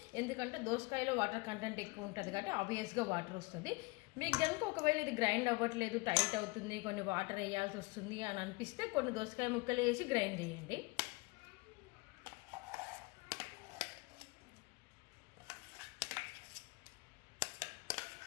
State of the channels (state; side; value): quieter; right; 25.9 dB